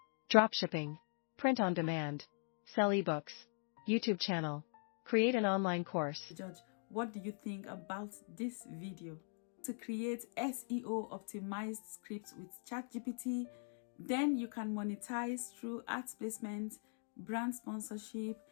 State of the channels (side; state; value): right; silent; 50 dB below the other